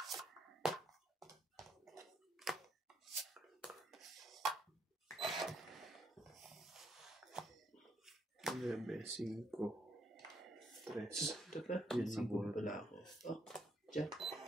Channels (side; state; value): both; normal; correlation 0.73